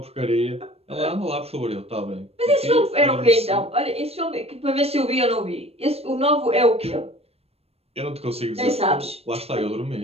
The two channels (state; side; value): late; left; 0.29 ms